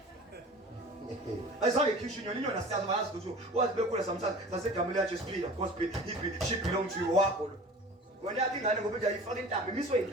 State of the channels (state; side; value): normal; both; correlation 0.40